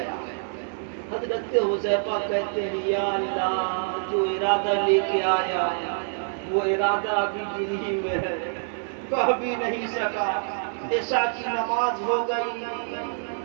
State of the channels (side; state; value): left; silent; 61 dB below the other